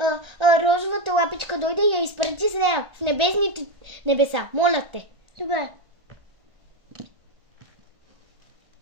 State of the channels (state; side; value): late; left; 1.5 ms